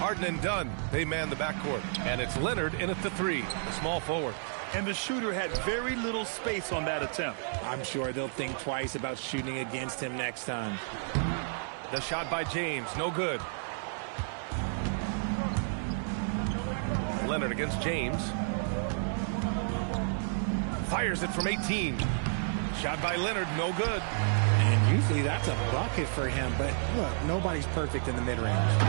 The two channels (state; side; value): silent; left; 57 dB below the other